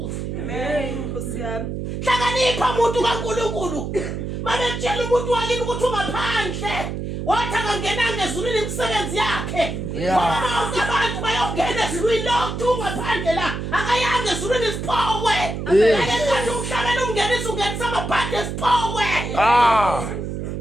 Uyahlonipha umuntu kaNkulunkulu. Mabetshela umuntu wakini ukuthi ungaphandle. Wathi akangenanga ezulwini imisebenzi yakhe. Ngoba abantu bayongena ezulwini lokhu ungaphandle la. Akayanga ezulwini isiphowe. Akekho umhlabeni umngenisa ungenisa amabhadi esiphowe.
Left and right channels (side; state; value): right; noise; hum, 5 dB below the sound